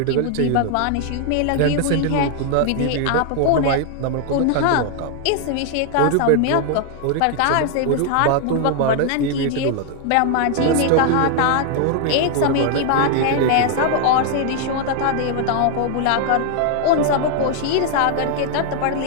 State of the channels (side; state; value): both; different; correlation 0.00